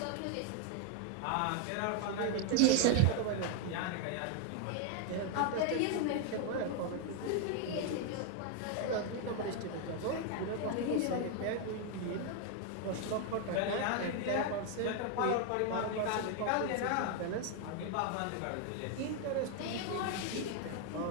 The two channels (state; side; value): different; both; correlation 0.01